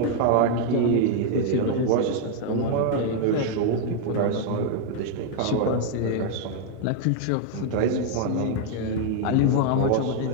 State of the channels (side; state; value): both; different; correlation 0.00